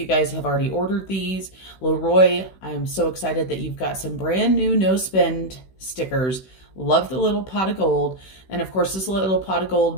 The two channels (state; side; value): late; right; 16 ms